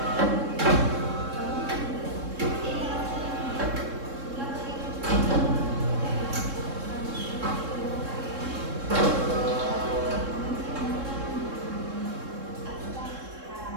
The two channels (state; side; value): late; left; 3.7 ms